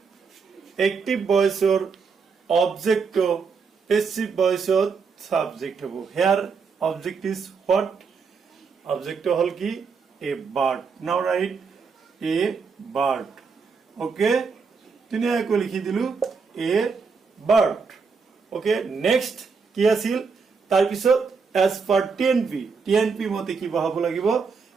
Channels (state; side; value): quieter; left; 5.2 dB